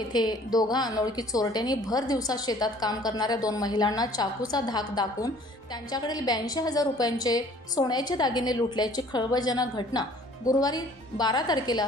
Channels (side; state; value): both; normal; correlation 0.54